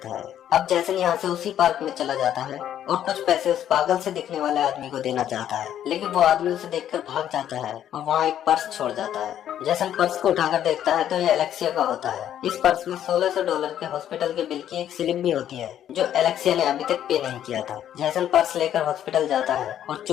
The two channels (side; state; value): right; quieter; 10.7 dB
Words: है। अब जैसन यहाँ से उसी पार्क में चला जाता है और कुछ पैसे उस पागल से दिखने वाले आदमी को देना चाहता है, लेकिन वो आदमी उसे देखकर भाग जाता है और वहाँ एक पर्स छोड़ जाता है। जैसन पर्स को उठाकर देखता है तो ये एलेक्सिया का होता है। इस पर्स में $1600 के हॉस्पिटल के बिल की एक स्लिप भी होती है जो एलेक्सिया ने अभी तक पे नहीं किया था। जैसन पर्स लेकर हॉस्पिटल जाता है और